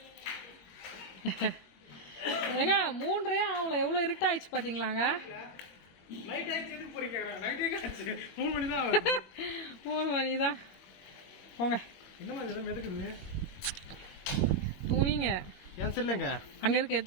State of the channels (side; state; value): right; late; 21 ms